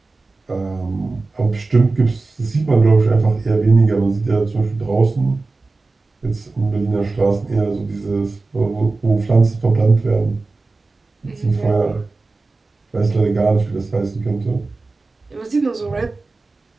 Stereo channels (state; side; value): quieter; left; 3.6 dB